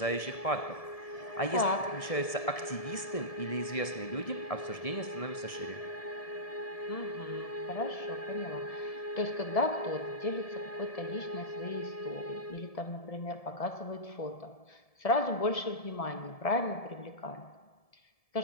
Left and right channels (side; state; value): right; late; 1.7 ms